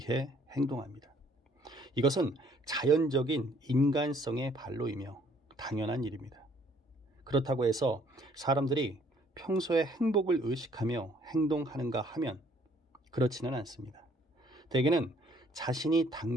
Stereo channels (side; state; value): both; normal; correlation 0.62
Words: 행동합니다. 이것은 자연적인 인간성의 발로이며 당연한 일입니다. 그렇다고 해서 사람들이 평소에 행복을 의식하며 행동하는가 하면 그렇지는 않습니다. 대개는 자신이